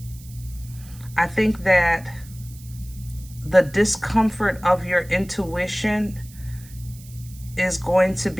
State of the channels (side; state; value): right; noise; hiss, 21 dB below the sound